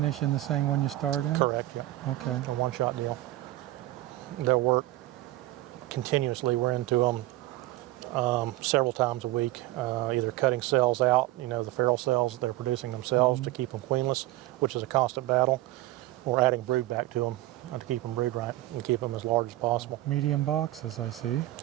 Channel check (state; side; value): quieter; left; 16.9 dB